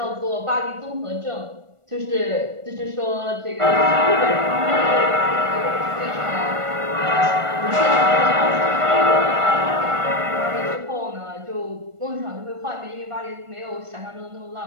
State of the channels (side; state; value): left; late; 1.4 ms